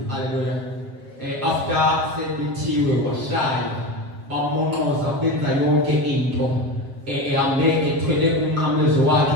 haleluya after sebethiwe washaya bamonqoza benza yonke into ehambe ethwele umnqamlezo wakhe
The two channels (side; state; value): left; late; 7.4 ms